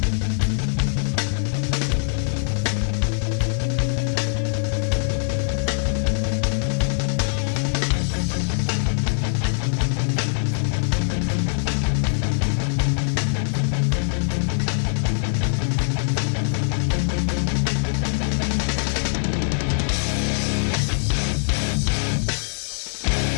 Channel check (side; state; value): right; silent; digital silence